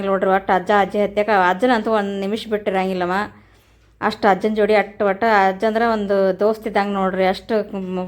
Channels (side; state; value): both; identical; correlation 1.00